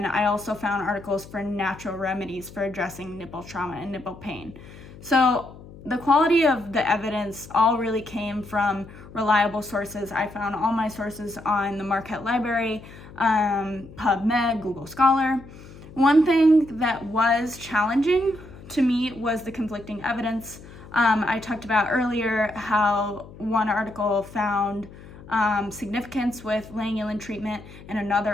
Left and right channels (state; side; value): noise; left; hum, 18 dB below the sound